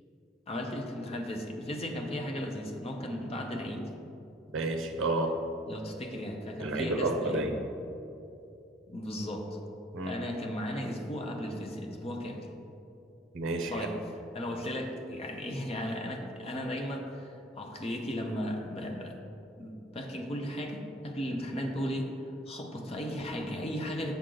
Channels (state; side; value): normal; both; correlation 0.56